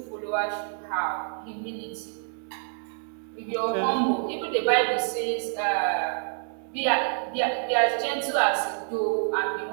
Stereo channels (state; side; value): silent; left; digital silence